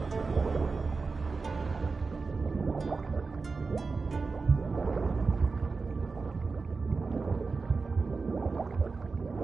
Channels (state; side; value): quieter; left; 4.3 dB